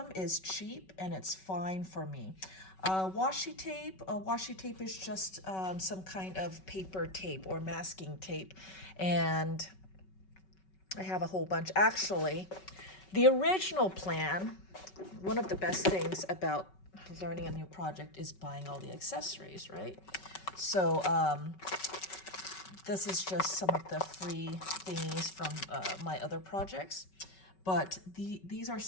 is cheap, and it's fine for me. Washi tape is just some kind of paper tape or masking tape, and I have a whole bunch. Actually, the original plan, one of the best things about learning a new project is buying all the accessories, right? So this is just some of the free thingies from my other projects, but these are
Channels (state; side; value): late; right; 5.3 ms